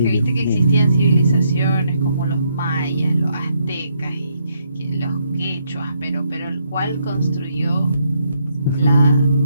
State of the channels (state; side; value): inverted; both; correlation -0.74